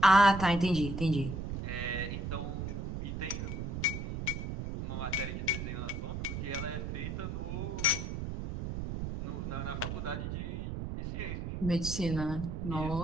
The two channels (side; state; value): right; noise; rumble, 4 dB below the sound